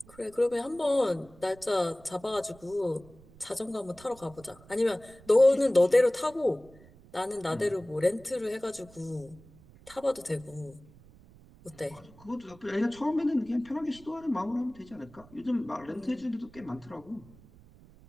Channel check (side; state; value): right; noise; rumble, 23 dB below the sound